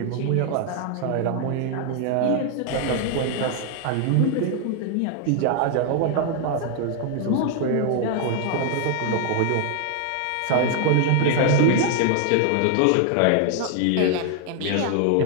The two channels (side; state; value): both; different; correlation 0.00